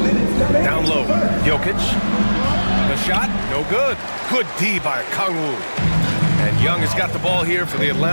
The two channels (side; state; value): both; inverted; correlation -1.00